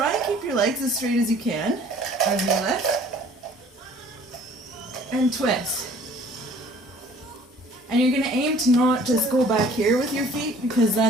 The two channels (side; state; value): both; normal; correlation 0.53